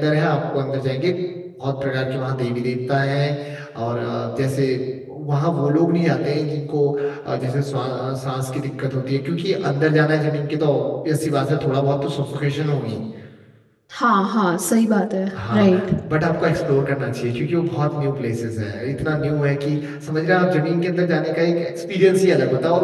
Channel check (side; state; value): both; identical; correlation 1.00